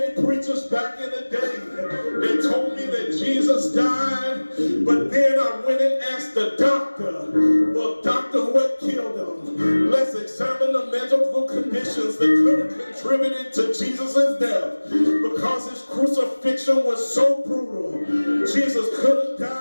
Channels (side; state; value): both; inverted; correlation -1.00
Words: preachers back in the day. They told me that Jesus died, but then I went and asked the doctor, well, doctor, what killed him? Let's examine the medical conditions that could have contributed to Jesus' death, because his crucifixion was so brutal. Jesus could have